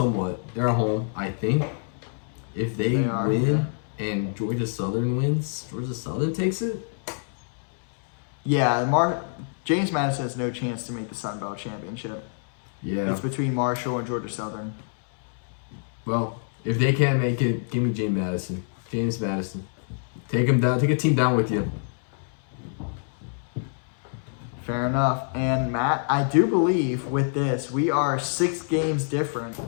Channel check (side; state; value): right; silent; 61 dB below the other